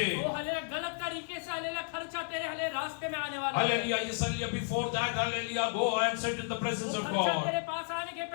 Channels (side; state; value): right; silent; digital silence